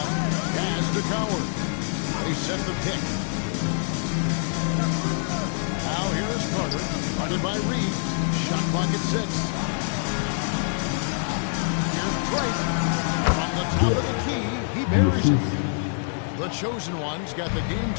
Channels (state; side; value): silent; right; 61 dB below the other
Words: Pass to Coward. They set the pick. Now here is Carter. Guarded by Reed. Shot clock at 6. Here's Drake. From the top of the key, he buries it. The chosen one's got the game